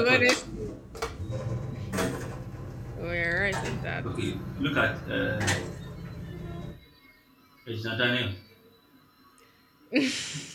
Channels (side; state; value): both; identical; correlation 1.00